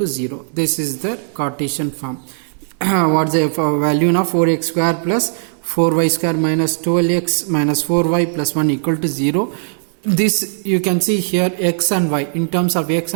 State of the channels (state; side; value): silent; left; 68 dB below the other